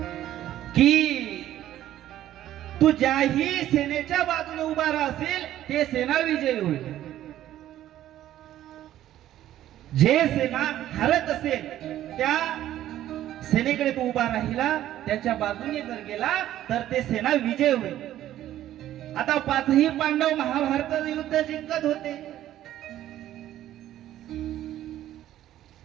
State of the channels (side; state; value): left; quieter; 12.8 dB